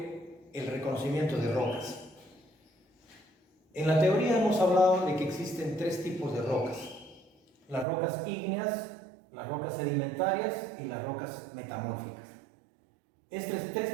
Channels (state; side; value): drops out; left; at 7.9 s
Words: el reconocimiento de rocas. En la teoría hemos hablado de que existen tres tipos de rocas: las rocas ígneas, las rocas sedimentarias y las rocas metamórficas. Estos tres